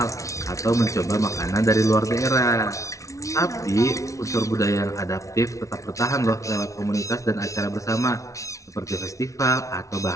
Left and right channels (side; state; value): right; late; 0.15 ms